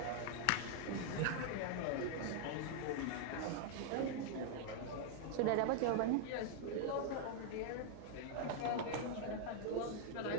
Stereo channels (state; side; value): different; both; correlation 0.00